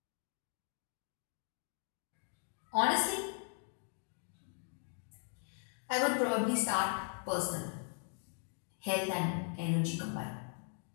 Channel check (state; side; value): silent; right; 52 dB below the other